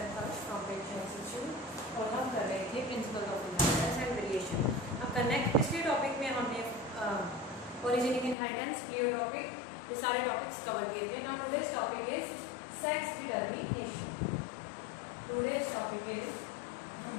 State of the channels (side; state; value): right; drops out; at 8.3 s